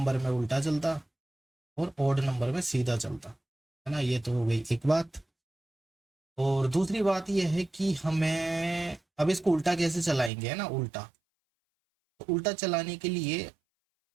में उल्टा चलता और ऑड नंबर में सीधा चलता, है ना। ये तो हो गई एक बात। और दूसरी बात यह है कि हमें अब इसको उल्टा कैसे चलाएंगे, है ना, उल्टा। तो उल्टा चलाने के लिए,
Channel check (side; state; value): left; drops out; at 10.3 s